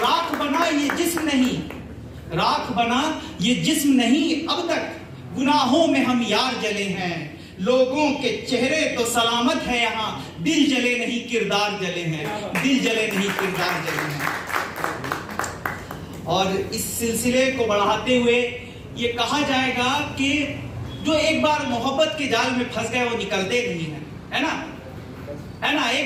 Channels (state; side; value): identical; both; correlation 1.00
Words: बना ये जिस्म नहीं, राख बना ये जिस्म नहीं, अब तक गुनाहों में हम यार जले हैं। लोगों के चेहरे तो सलामत है यहाँ, दिल जले नहीं किरदार जले हैं, दिल जले नहीं किरदार जले हैं। और इस सिलसिले को बढ़ाते हुए ये कहा जाएगा कि जो एक बार मोहब्बत के जाल में फंस गए वो निकलते नहीं हैं, है ना, है ना।